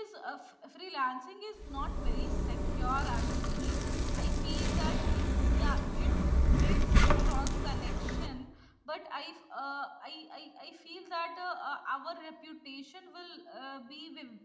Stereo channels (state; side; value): identical; both; correlation 1.00